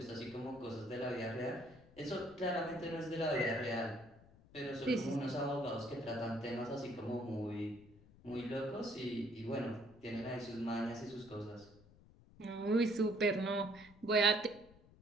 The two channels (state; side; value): noise; left; rumble, 24 dB below the sound